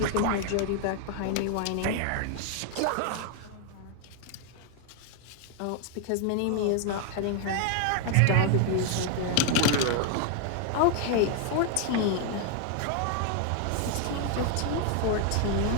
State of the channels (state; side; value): different; both; correlation 0.00